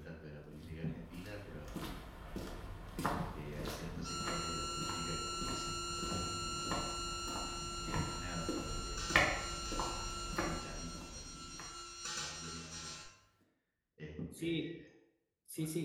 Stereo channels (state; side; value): identical; both; correlation 1.00